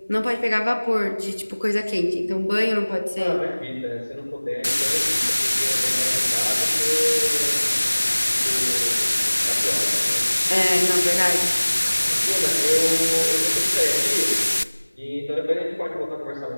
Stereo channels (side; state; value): both; inverted; correlation -1.00